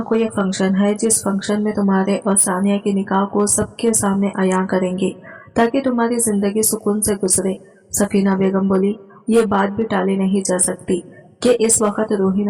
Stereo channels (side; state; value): both; identical; correlation 1.00